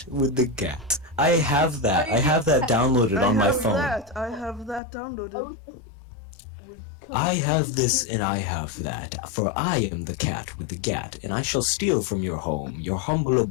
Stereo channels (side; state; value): right; drops out; at 4.8 s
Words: with the gat. I have that. I have that downloaded on my phone. I have that downloaded. I have this and I have that, for I am the cat with the gat, and I shall steal from your home, your humble